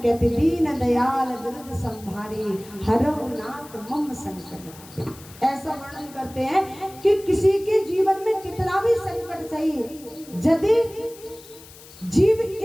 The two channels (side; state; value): left; noise; hiss, 20 dB below the sound